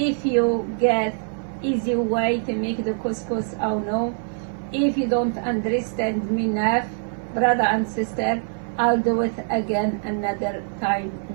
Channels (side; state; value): left; silent; 55 dB below the other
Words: you get easy way to make the couscous or no. If you don't understand me enough, brother and sister, I'll do it again another time,